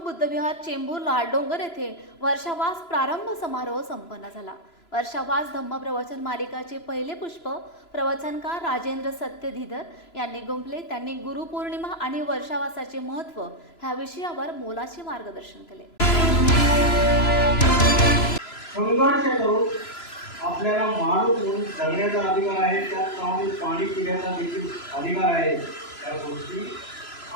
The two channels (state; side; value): late; right; 3.0 ms